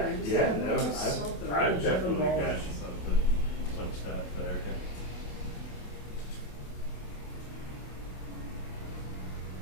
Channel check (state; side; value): late; right; 27 ms